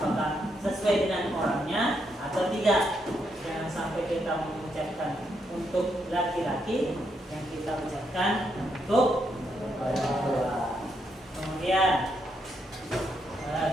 sesuai dengan orangnya atau tidak. Jangan sampai kita mengucapkan untuk laki-laki yang kita ucapkan untuk perempuan. Kemudian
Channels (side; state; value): both; normal; correlation 0.78